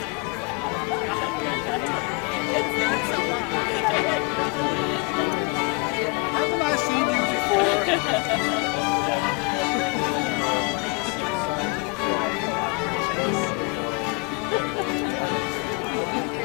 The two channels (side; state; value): right; quieter; 30.1 dB